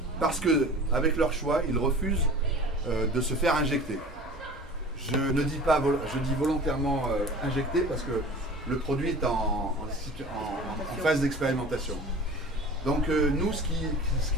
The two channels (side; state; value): both; normal; correlation 0.40